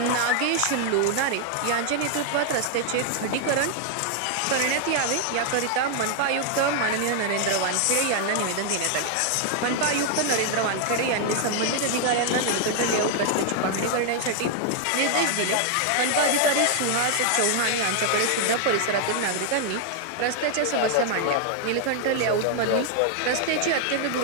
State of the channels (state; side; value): different; both; correlation 0.00